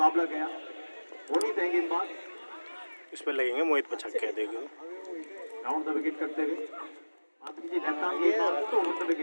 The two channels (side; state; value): both; inverted; correlation -1.00